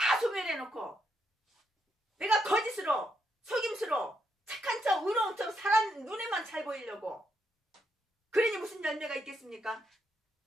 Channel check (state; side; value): normal; both; correlation 0.79